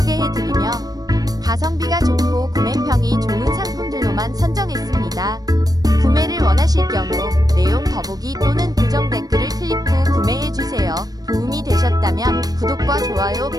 안내해드리며 가성비가 좋고 구매평이 좋은 상품들로만 선정했습니다. 구매를 원하실 경우 내용 더보기 또는 고정 댓글을 클릭 후 구매해주세요. 도움이 되셨다면 구독과 좋아요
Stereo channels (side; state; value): left; late; 0.19 ms